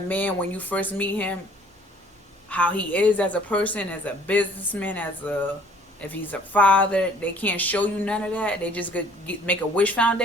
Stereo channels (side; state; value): both; normal; correlation 0.56